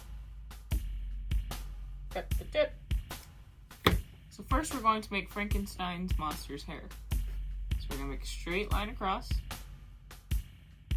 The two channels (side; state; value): both; identical; correlation 1.00